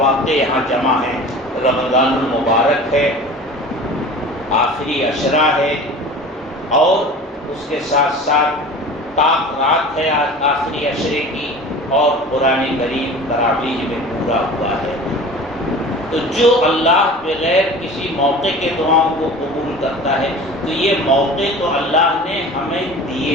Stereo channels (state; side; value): normal; both; correlation 0.39